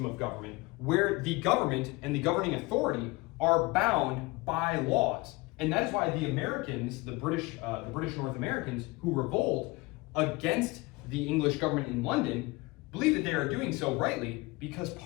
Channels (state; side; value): quieter; right; 23.5 dB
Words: of government where the government and the governing authority are bound by laws. And that is why the Americans, the British North Americans who revolt against the English government in London, believe that they are doing so rightly because